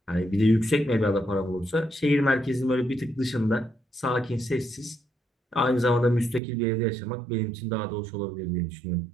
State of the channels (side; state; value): left; drops out; at 6.4 s